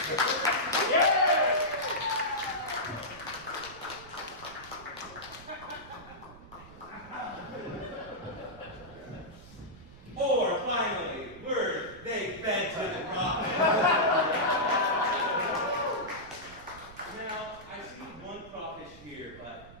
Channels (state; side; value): noise; right; rumble, 19 dB below the sound